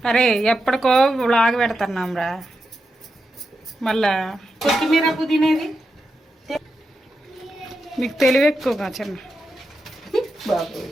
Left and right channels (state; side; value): normal; both; correlation 0.88